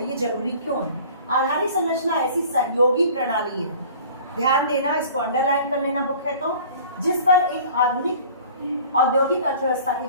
ये जरूरी क्यों है। आधारिक संरचना ऐसी सहयोगी प्रणाली है, ध्यान देना, इसको अंडरलाइन कर लेना बुक है तो, जिस पर एक आधुनिक औद्योगिक अर्थव्यवस्था की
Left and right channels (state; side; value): inverted; both; correlation -0.46